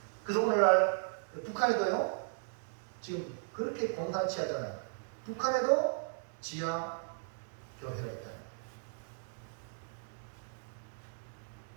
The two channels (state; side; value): silent; left; digital silence